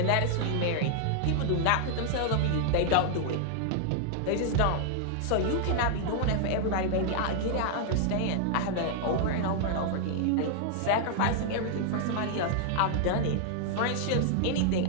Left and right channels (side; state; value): both; different; correlation -0.01